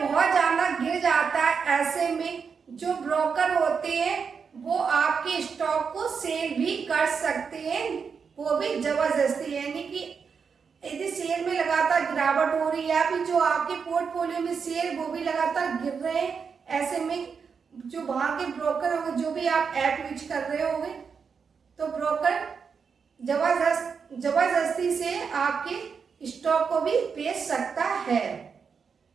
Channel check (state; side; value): quieter; left; 6.0 dB